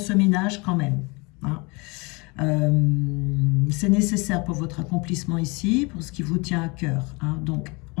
quand même. Hein. C'est nécessaire pour votre accomplissement ici, pour ce qui vous tient à cœur. Hein. Donc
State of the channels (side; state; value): right; quieter; 27.7 dB